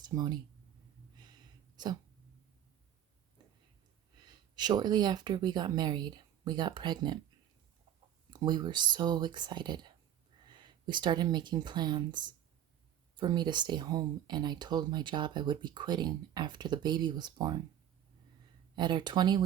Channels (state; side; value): quieter; left; 10.7 dB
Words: So, shortly after we got married, we got pregnant. We were so excited. We started making plans for me to stay home, and I told my job I would be quitting after the baby was born. At our